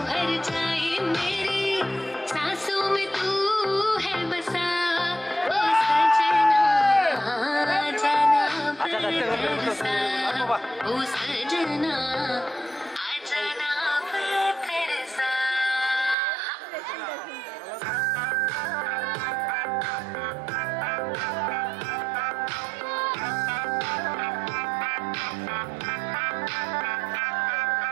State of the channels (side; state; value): left; drops out; at 16.2 s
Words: हर जाए। मेरी सांसों में तू है बसा ओ सजना, जाना बरसा ओ सजना, आजाना बरसा।